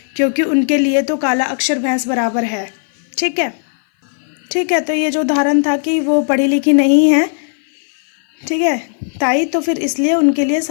क्योंकि उनके लिए तो काला अक्षर भैंस बराबर है। ठीक है, ठीक है, तो ये जो उदाहरण था कि वो पढ़ी लिखी नहीं है, ठीक है, ताई, तो फिर इसलिए उनके लिए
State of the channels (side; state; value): right; silent; 58 dB below the other